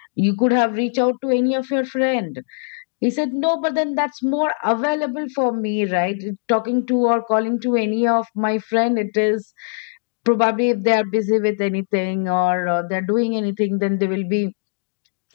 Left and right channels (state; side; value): silent; right; digital silence